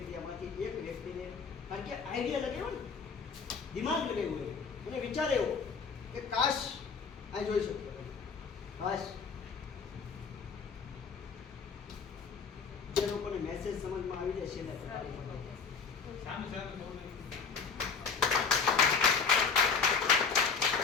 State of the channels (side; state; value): right; quieter; 5.5 dB